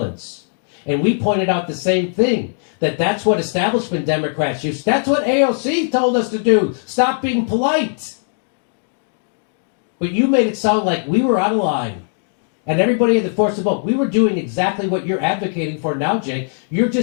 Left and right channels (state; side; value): silent; right; digital silence